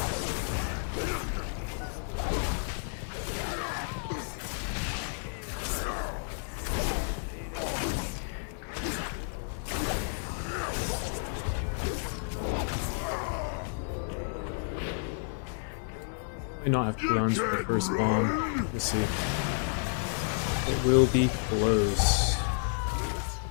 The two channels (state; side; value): silent; right; 57 dB below the other